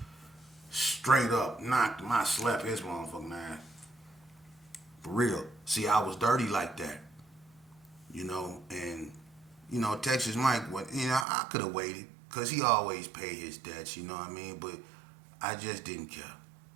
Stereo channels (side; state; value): left; drops out; at 11.2 s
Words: Straight up, knocked him. I slept his motherfucking ass. For real. See, I was dirty like that. And, Texas Mike, I could have waited because he always paid his debts, you know what I mean? But I just didn't care,